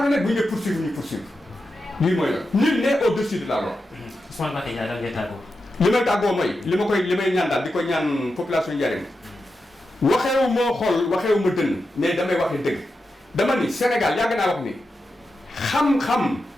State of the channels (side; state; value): both; normal; correlation 0.89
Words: bu ñu dee poursuivre ñu poursuivre lii mooy la nul n'est au-dessus de la loi. Ousmane Mbacké Ndiaye daal ngay tàggoo. li may tàggoo mooy li may ñaan daal di ko ñaan population Ndiarème waxeewu moo xool waxeewu ma dënn mais damay waxee dëgg dama ni Sénégal yàgg naa wax ni xam-xam